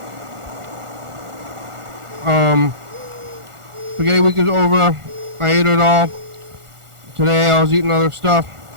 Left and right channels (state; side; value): late; left; 1.4 ms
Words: Spaghetti week is over. I ate it all. Today I was eating other stuff